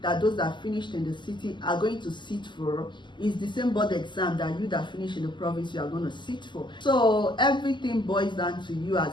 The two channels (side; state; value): right; late; 0.22 ms